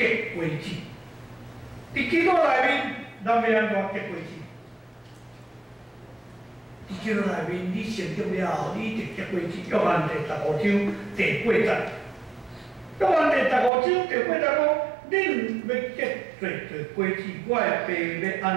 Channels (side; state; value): left; drops out; at 13.7 s